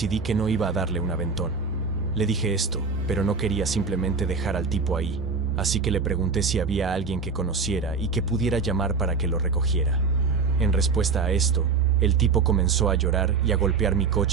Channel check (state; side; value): quieter; left; 4.8 dB